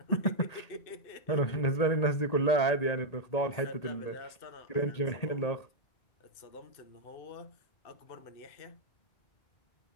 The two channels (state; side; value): late; right; 1.8 ms